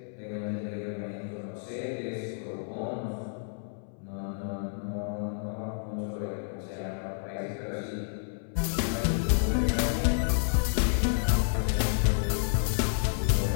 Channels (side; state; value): right; silent; 58 dB below the other